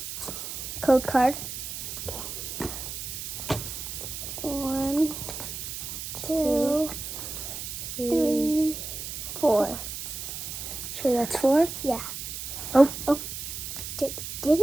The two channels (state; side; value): noise; right; hiss, 7 dB below the sound